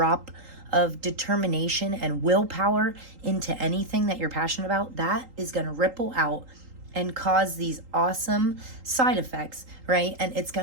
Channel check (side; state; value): left; late; 3.8 ms